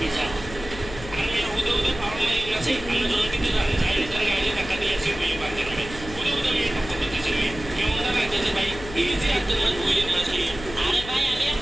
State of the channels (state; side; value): noise; left; hum, 13 dB below the sound